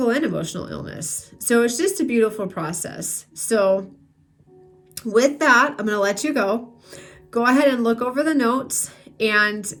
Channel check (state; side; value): identical; both; correlation 1.00